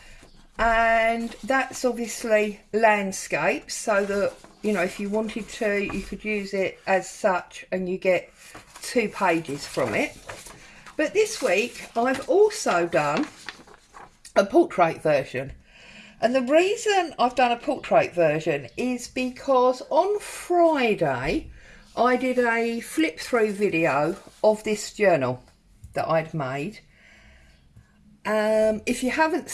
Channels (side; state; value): both; identical; correlation 1.00